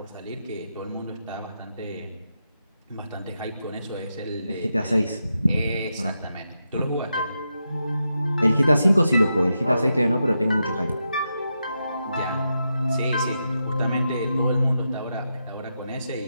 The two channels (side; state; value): both; inverted; correlation -0.86